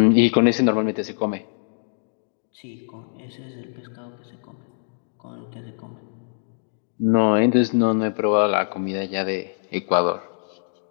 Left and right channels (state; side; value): silent; right; digital silence